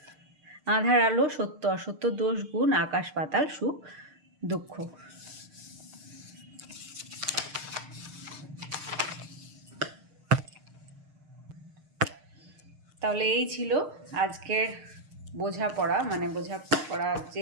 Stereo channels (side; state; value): left; late; 6.6 ms